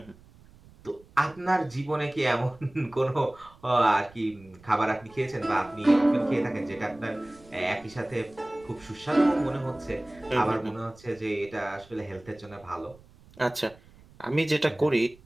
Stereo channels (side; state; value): right; noise; rumble, 25 dB below the sound